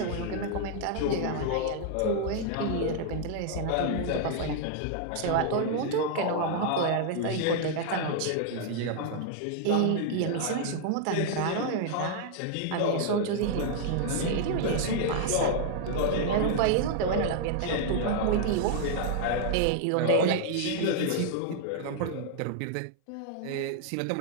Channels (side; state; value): both; different; correlation -0.01